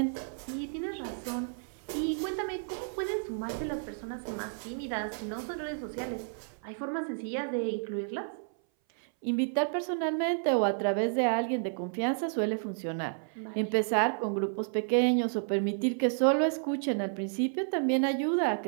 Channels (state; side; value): silent; left; 57 dB below the other